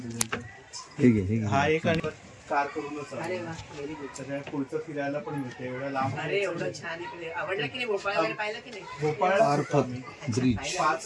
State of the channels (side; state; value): both; identical; correlation 1.00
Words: ठीक आहे. हा एक आणि कार करूनच. अरे वा, व्हेरी गुड. सगळ्या पुढचं फिरायला पण मिळते एवढ्या लांब. अरे एवढं छान इकडे. आवडलं की नाही भोपाळ वगैरे? पाहिलं की नाही? भोपाळ ब्रिज